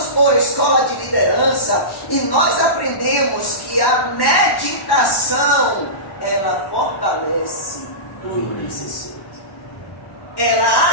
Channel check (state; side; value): late; right; 1.1 ms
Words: por escola de liderança, e nós aprendemos que a meditação, ela fortalece o intercessor. Ela